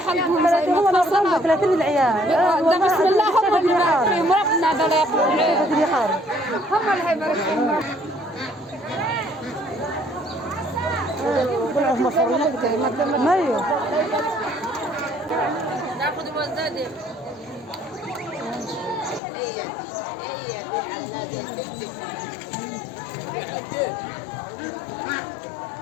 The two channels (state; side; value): drops out; right; at 19.2 s